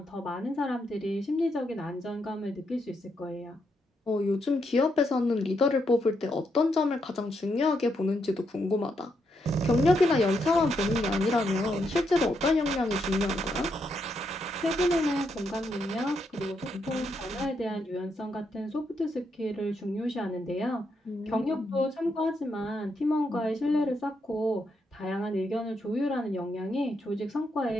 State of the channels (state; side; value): normal; both; correlation 0.80